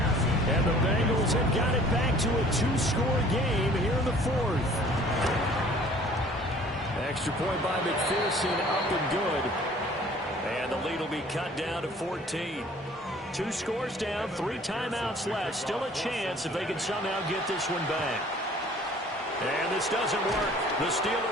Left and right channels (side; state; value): both; normal; correlation 0.52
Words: And the Bengals have got it back to a 2-score game here in the 4th. Extra point by McPherson, up and good. And the lead will be cut down to 14. 2 scores down, 3 timeouts left. Still a chance if they can somehow get this one back. And this doesn't work. The